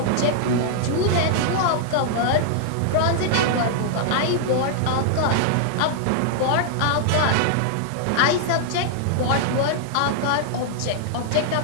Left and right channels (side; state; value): both; different; correlation -0.01